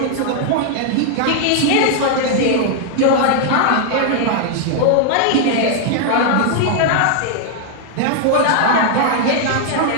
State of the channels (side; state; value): both; different; correlation 0.00